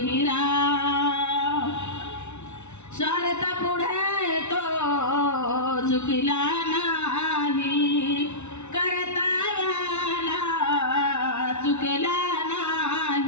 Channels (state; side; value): late; right; 0.82 ms